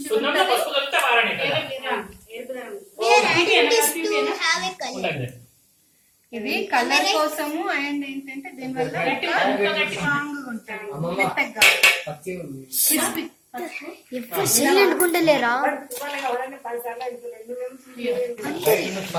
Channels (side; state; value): both; identical; correlation 1.00